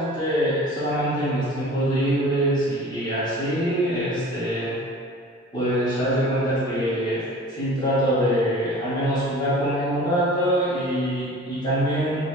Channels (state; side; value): normal; both; correlation 0.43